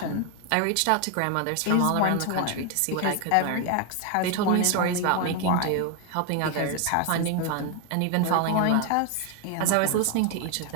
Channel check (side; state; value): both; different; correlation 0.01